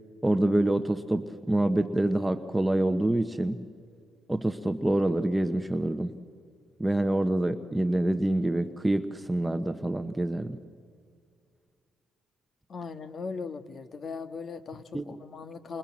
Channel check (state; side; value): normal; both; correlation 0.97